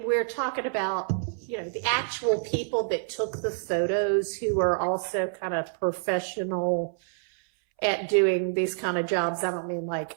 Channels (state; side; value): silent; left; 60 dB below the other